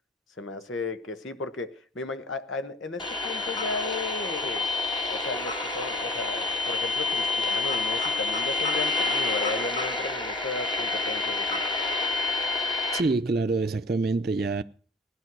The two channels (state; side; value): normal; both; correlation 0.44